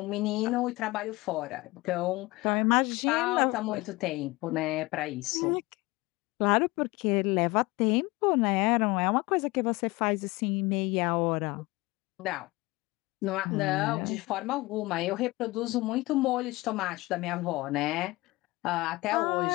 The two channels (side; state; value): right; quieter; 21.6 dB